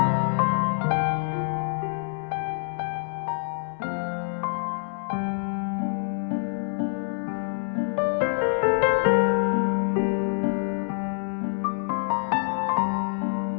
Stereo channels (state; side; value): silent; right; 57 dB below the other